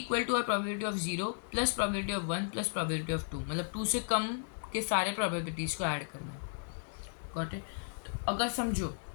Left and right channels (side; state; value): right; silent; digital silence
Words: to probability of 0 plus probability of 1 plus probability of 2, मतलब 2 से कम के सारे प्रोबेबिलिटीज़ को ऐड करना है। Got it. तो अगर समझो